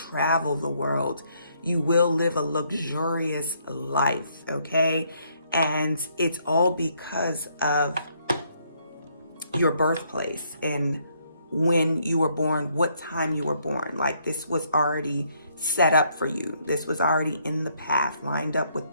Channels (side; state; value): both; inverted; correlation -0.70